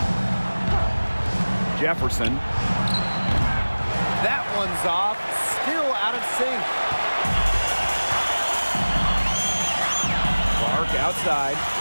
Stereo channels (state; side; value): inverted; both; correlation -1.00